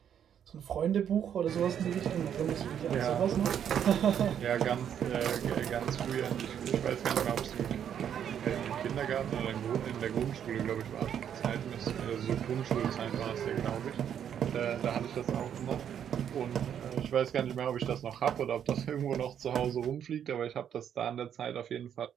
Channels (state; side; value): quieter; left; 9.0 dB